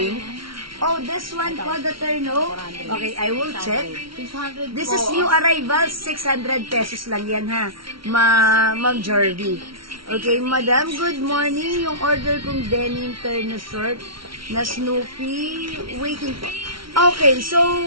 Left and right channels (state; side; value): late; left; 0.74 ms